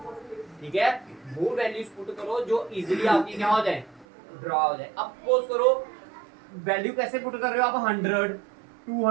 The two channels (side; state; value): left; drops out; at 4.0 s